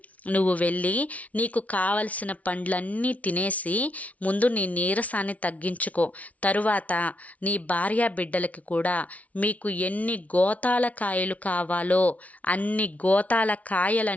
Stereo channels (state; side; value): late; right; 0.068 ms